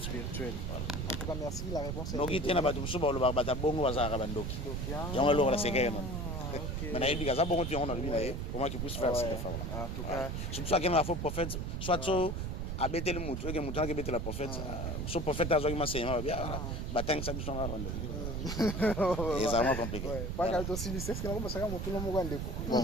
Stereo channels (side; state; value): right; noise; rumble, 3 dB below the sound